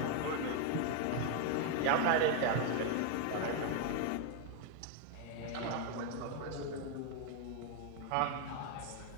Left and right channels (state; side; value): different; both; correlation 0.01